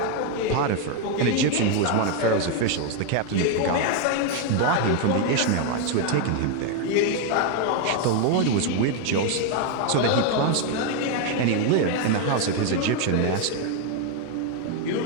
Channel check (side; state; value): both; different; correlation 0.01